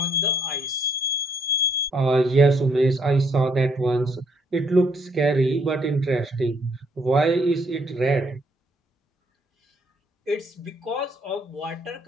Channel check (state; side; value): normal; both; correlation 0.69